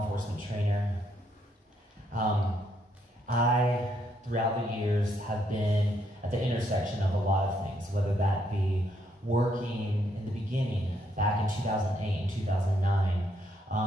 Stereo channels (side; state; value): both; normal; correlation 0.74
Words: enforcement trainer, I, throughout the years, have been at the intersection of a lot of things, whether that be working in the beginning, back in 2008 and 2009,